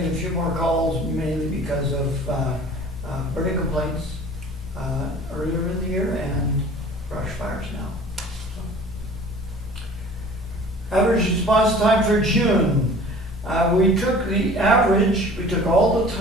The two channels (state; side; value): normal; both; correlation 0.46